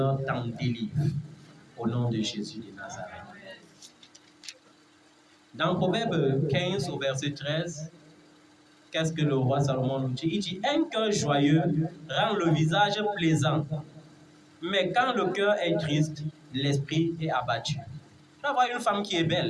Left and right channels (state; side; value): identical; both; correlation 1.00